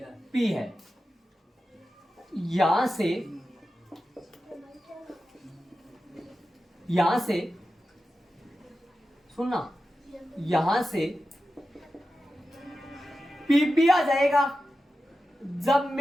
पी है। यहां से सुनना, यहां से पीपी आ जाएगा जब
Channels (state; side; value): normal; both; correlation 0.92